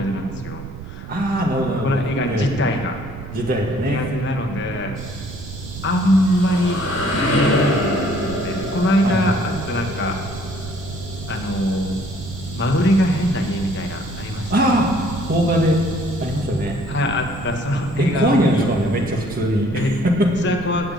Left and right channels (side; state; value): right; noise; rumble, 11 dB below the sound